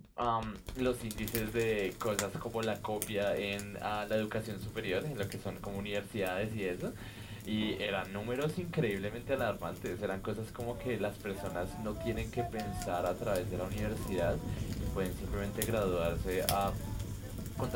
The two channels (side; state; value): both; identical; correlation 1.00